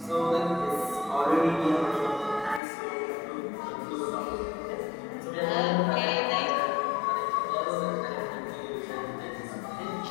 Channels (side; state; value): right; drops out; at 2.6 s